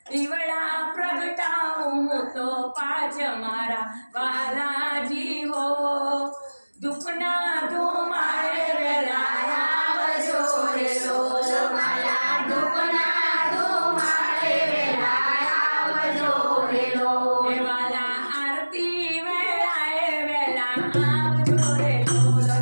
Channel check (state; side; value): inverted; both; correlation -1.00